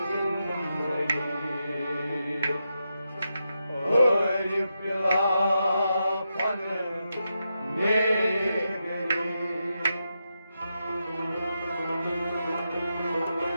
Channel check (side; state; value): both; inverted; correlation -0.86